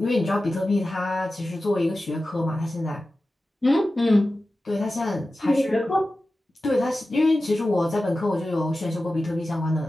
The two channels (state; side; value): normal; both; correlation 0.94